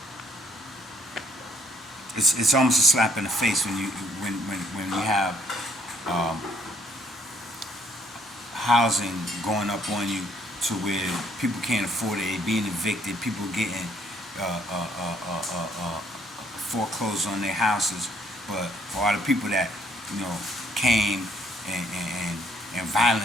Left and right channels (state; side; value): normal; both; correlation 0.65